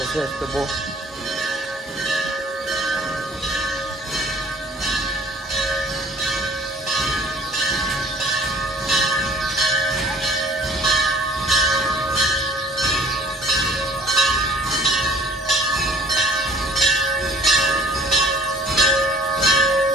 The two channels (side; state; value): both; normal; correlation 0.52